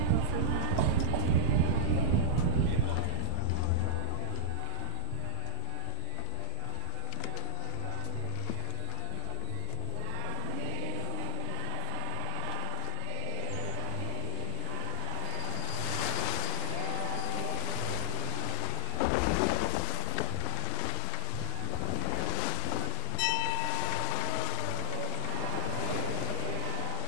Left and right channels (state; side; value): different; both; correlation -0.01